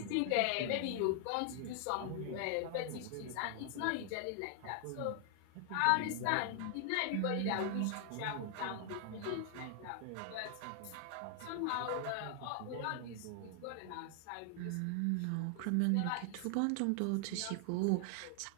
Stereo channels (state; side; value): different; both; correlation 0.00